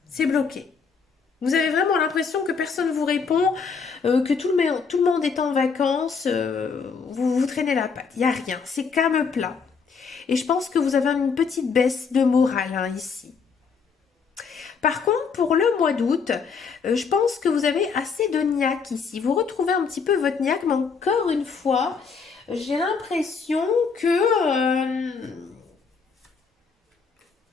C'est bloqué. Vous avez vraiment l'impression que personne ne vous répond, que tout le monde est en vacances, vous traînez la patte. Il n'y a rien, c'est calme plat. Et je pense que vous avez une petite baisse de morale hein, ici. Par contre, pour le mois d'août, je pense que vous avez assez de niaque ici. Vous retrouvez un petit peu votre niaque, mais encore une fois, j'ai l'impression que...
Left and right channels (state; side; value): quieter; right; 5.5 dB